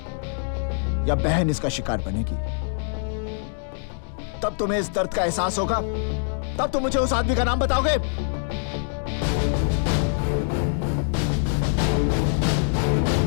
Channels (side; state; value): right; silent; digital silence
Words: या बहन इसका शिकार बनेगी, तब तुम्हें इस दर्द का एहसास होगा। तब तुम मुझे उस आदमी का नाम बताओगे।